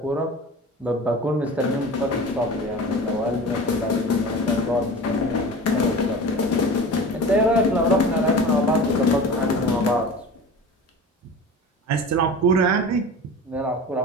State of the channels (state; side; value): normal; both; correlation 0.35